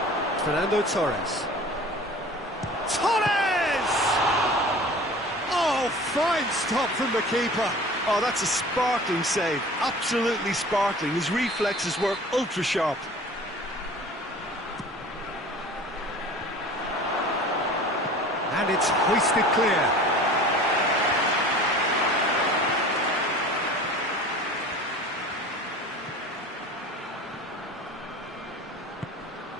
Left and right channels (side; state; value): both; normal; correlation 0.42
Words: Fernando Torres. Torres! Oh, fine stop from the keeper. Oh, that's a sparkling save. Absolutely sparkling. His reflexes work ultra sharp. And it's hoisted clear.